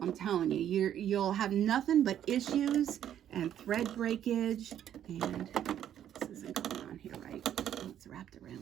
I'm telling you, you'll have nothing but issues and thread breakage. And this isn't going on here, right? Oh, it's wrapped around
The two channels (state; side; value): quieter; left; 10.5 dB